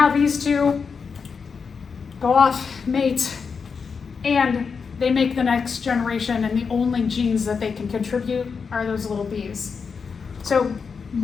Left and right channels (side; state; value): right; quieter; 5.6 dB